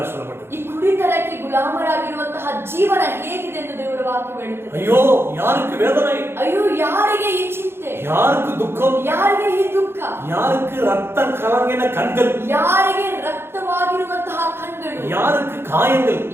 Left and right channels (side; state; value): left; late; 0.11 ms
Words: சொல்லப்பட்டது. ಈ ಕುಡಿತನಕ್ಕೆ ಗುಲಾಮರಾಗಿರುವಂತಹ ಜೀವನ ಹೇಗಿದೆ ಎಂದು ದೇವರ ವಾಕ್ಯ ಹೇಳುತ್ತದೆ. ஐயோ, யாருக்கு வேதனை? ಅಯ್ಯೋ, ಯಾರಿಗೆ ಈ ಚಿಂತೆ? யாருக்கு துக்கம்? ಯಾರಿಗೆ ಈ ದುಃಖ? யாருக்கு ரத்த கலங்கின கண்கள்? ಯಾರಿಗೆ ರಕ್ತವಾಗಿರುವಂತಹ ಕಣ್ಣುಗಳು? யாருக்கு காயங்கள்?